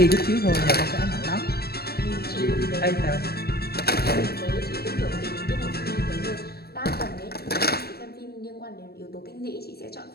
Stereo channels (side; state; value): right; late; 0.46 ms